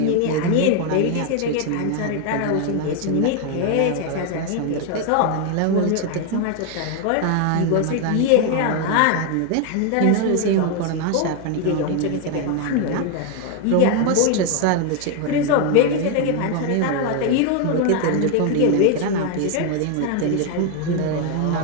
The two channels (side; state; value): both; different; correlation 0.01